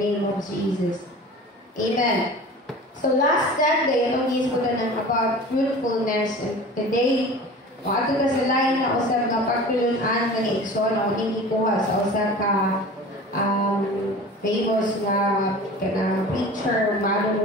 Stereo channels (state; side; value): normal; both; correlation 0.39